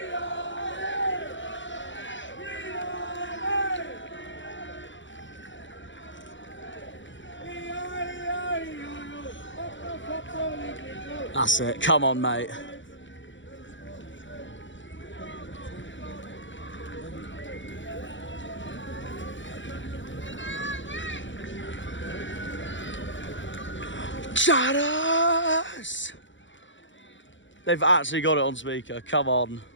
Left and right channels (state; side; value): late; right; 0.55 ms